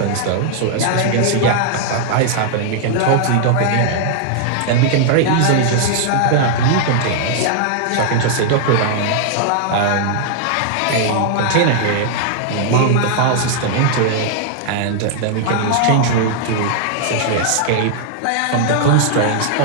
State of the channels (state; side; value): different; both; correlation -0.01